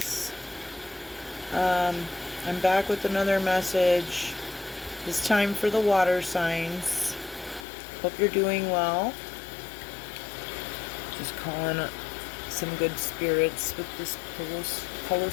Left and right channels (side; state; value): right; drops out; at 7.7 s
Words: I'm back with another message. It's time for the water signs. Hope you're doing well. Just calling some good spirits with this Palo